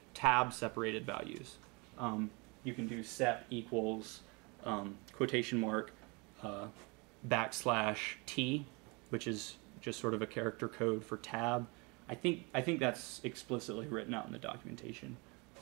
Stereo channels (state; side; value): quieter; left; 29.1 dB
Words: tab separated values, you can do sep equals quotation mark \t, which is just sort of a character code for tab. I think that's explicitly written out in the documentation,